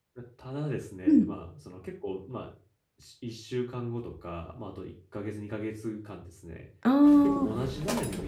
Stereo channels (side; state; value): both; identical; correlation 1.00